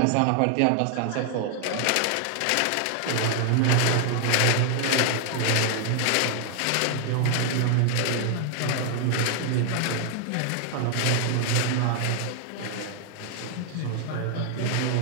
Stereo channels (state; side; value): different; both; correlation 0.00